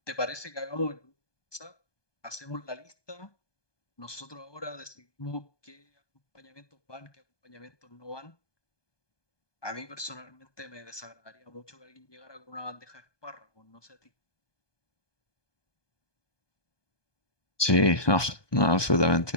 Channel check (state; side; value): late; right; 1.2 ms